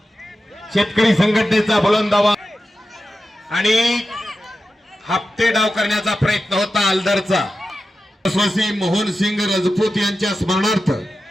शेतकरी संघटनेचा बुलंद आवाज आणि हप्ते डाव करण्याचा प्रयत्न होता आलदरचा। स्वसी मोहन सिंग राजपूत यांच्या स्मरणार्थ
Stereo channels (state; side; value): normal; both; correlation 0.92